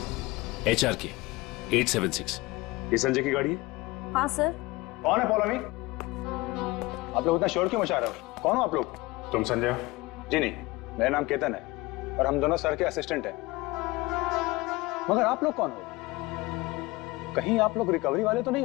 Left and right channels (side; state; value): right; quieter; 21.8 dB